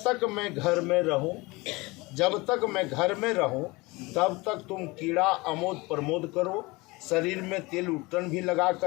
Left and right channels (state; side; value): quieter; right; 23.5 dB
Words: मैं घर में रहूं, जब तक मैं घर में रहूं तब तक तुम कीड़ा अमोद प्रमोद करो, शरीर में तेल उट्टन भी लगा